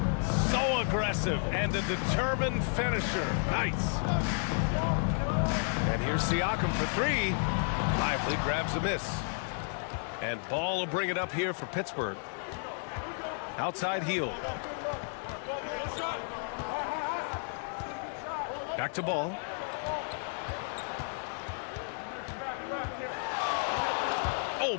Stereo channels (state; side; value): silent; right; 56 dB below the other